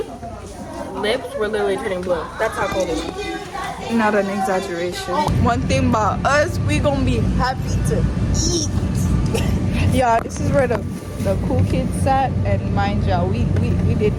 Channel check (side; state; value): both; identical; correlation 1.00